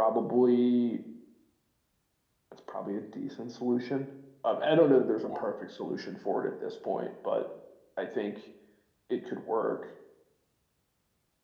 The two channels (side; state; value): both; identical; correlation 1.00